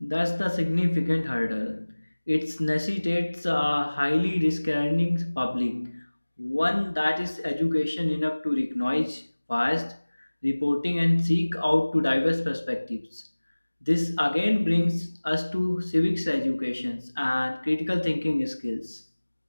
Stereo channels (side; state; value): both; inverted; correlation -1.00